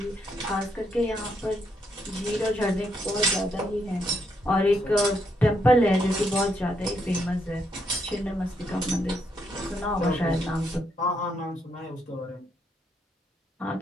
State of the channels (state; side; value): normal; both; correlation 0.77